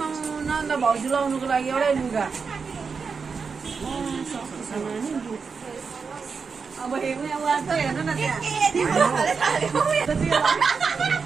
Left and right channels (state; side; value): quieter; left; 5.3 dB